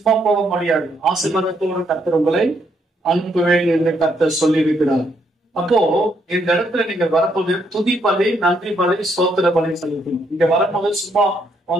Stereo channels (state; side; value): normal; both; correlation 0.74